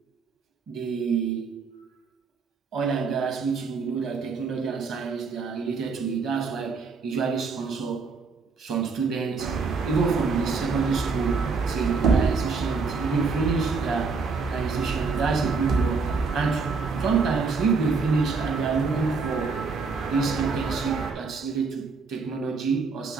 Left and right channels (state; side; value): quieter; left; 4.7 dB